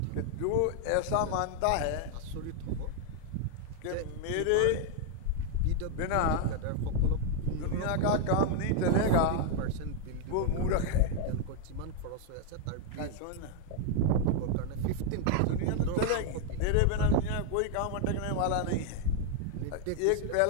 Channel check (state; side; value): different; both; correlation 0.00